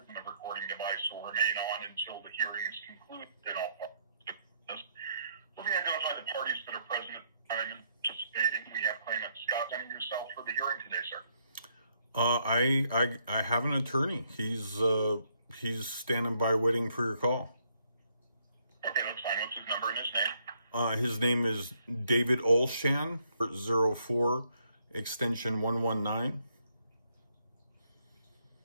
the recording device will remain on until the hearing is concluded in all parties. Let me identify the parties that are present at the time and participating. We have claimant Scott presenting yourself for the hearing today, sir. I have an attorney. He's standing by waiting for your call. Okay, that's fine. What's his number and his name? His name is David Olshan, 04 extension 119.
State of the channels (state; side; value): inverted; both; correlation -0.72